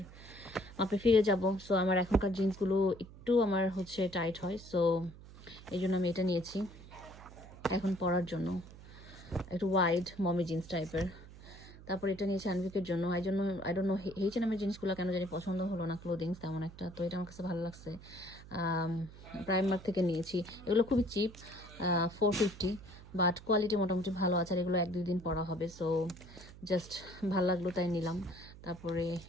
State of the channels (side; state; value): right; noise; hum, 18 dB below the sound